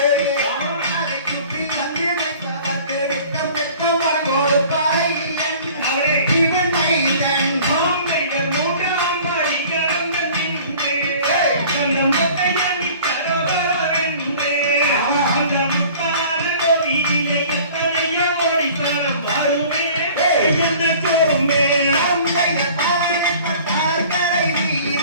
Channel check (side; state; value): both; inverted; correlation -0.47